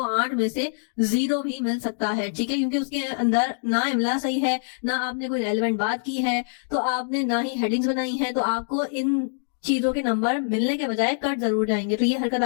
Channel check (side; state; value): right; silent; digital silence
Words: 8 में से 0 भी मिल सकता है, ठीक है। क्योंकि उसके अंदर ना इमला सही है, ना आपने कोई रेलेवेंट बात की है, तो आपने ना ही हेडिंग्स बनाई है, तो आपको इन चीजों के नंबर मिलने के बजाय कट जरूर जाएंगे। तो ये हरकत